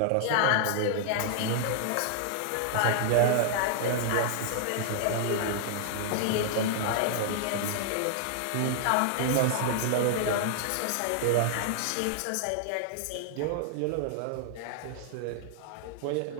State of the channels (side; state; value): both; different; correlation -0.01